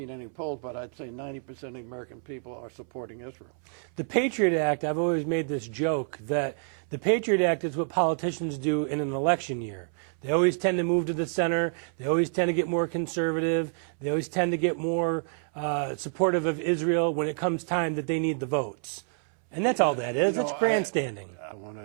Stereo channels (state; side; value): silent; left; 59 dB below the other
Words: any polls, but I'd say 90% of the American people are supporting Israel. The Patriot Act, I've always made this joke that the Patriot Act is what politicians do in an election year. They always tend to move to the center. They always tend to get more conservative. They always tend to get more supportive of Israel when it comes time that they need the votes. And that's all that is. It's grandstanding.